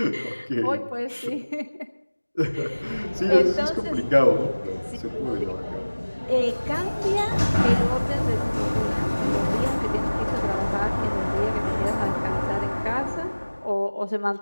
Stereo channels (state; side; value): inverted; both; correlation -1.00